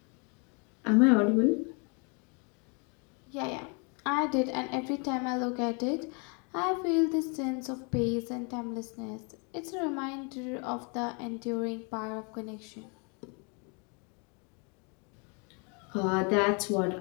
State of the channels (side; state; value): right; quieter; 34.6 dB